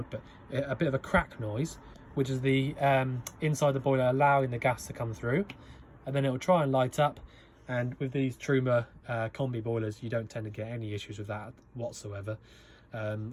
but a bit of a crack noise, which is the inside the boiler allowing the gas to come through, and then it'll try and light up. And with these Truma combi boilers, you don't tend to get any issues with that whatsoever.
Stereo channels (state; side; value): identical; both; correlation 1.00